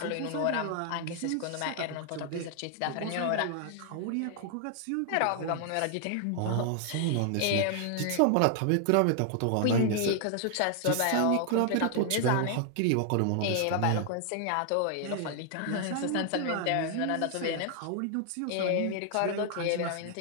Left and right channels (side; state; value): both; different; correlation 0.00